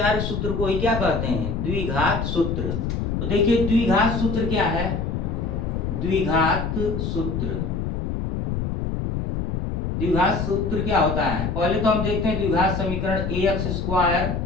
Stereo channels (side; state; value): left; noise; rumble, 2 dB below the sound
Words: सूत्र को ही क्या कहते हैं? द्विघात सूत्र। तो देखिए द्विघात सूत्र क्या है? द्विघात सूत्र, द्विघात सूत्र क्या होता है? पहले तो हम देखते हैं द्विघात समीकरण ax स्क्वायर